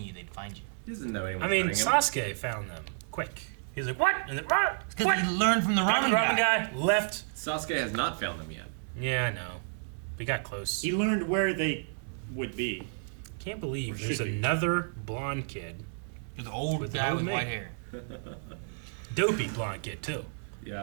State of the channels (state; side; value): silent; left; 57 dB below the other